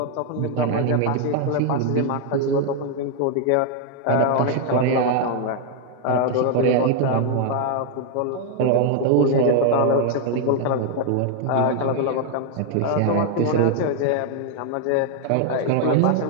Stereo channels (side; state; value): both; different; correlation 0.00